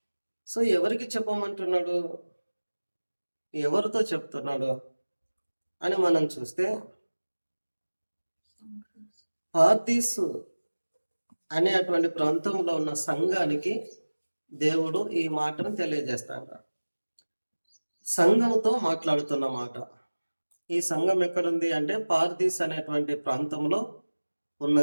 సో ఎవరికి చెప్పమంటున్నాడు, ఎవరితో చెప్తున్నాడు అని మనం చూస్తే, పార్దీసు అనేటువంటి ప్రాంతంలో ఉన్న సంఘానికి దేవుడు ఈ మాటను తెలియజేస్తాడు. సంఘంతో మాట్లాడుతున్న మాట. ఈ సంఘం ఎక్కడుంది అంటే పార్దీస్ అనేటువంటి ప్రాంతంలో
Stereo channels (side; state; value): both; inverted; correlation -1.00